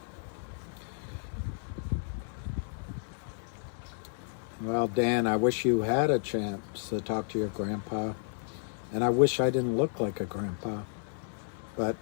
Well, Dan, I wish you had a chance to talk to your grandpa, and I wish I didn't look like a grandpa. But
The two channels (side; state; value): right; silent; 56 dB below the other